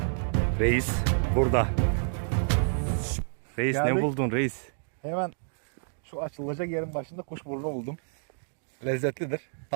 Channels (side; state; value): left; silent; digital silence